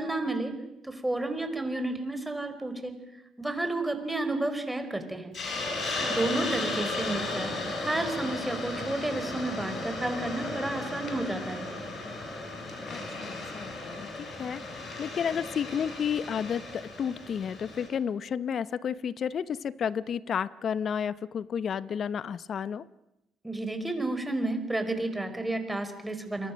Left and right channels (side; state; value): both; normal; correlation 0.78